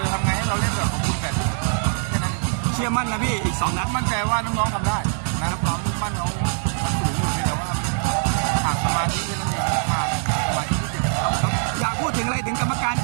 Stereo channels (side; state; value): left; silent; 64 dB below the other